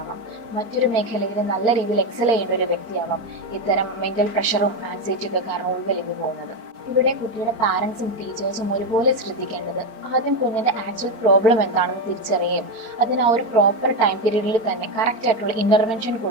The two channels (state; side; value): late; left; 4.5 ms